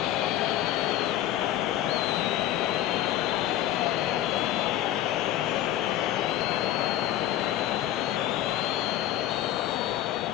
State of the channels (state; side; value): quieter; right; 12.8 dB